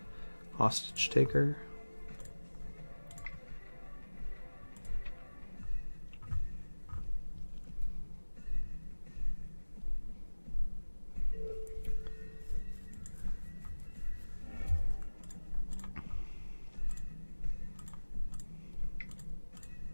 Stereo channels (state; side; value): inverted; both; correlation -1.00